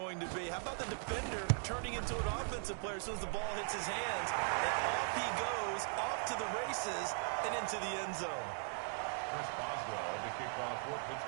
to be. How about the defender turning into an offensive player as soon as the ball hits his hands? And off he goes, off to the races, and into the end zone. Chris Boswell to kick off for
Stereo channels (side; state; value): left; silent; 52 dB below the other